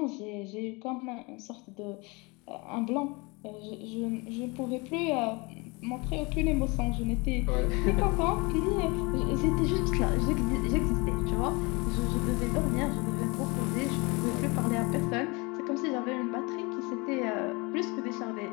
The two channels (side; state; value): right; quieter; 27.1 dB